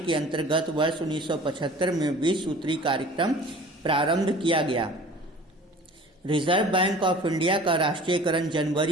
अंतर्गत वर्ष 1975 में 20 सूत्री कार्यक्रम प्रारंभ किया गया। रिजर्व बैंक ऑफ इंडिया का राष्ट्रीयकरण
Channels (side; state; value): both; normal; correlation 0.45